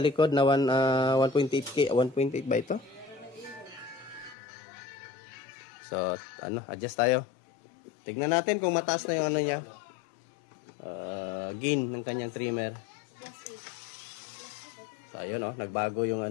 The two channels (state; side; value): drops out; right; at 4.4 s